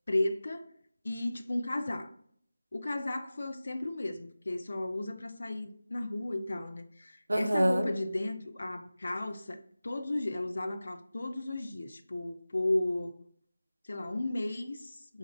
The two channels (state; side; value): inverted; both; correlation -0.96